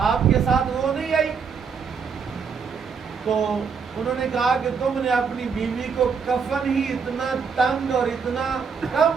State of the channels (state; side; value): quieter; left; 5.9 dB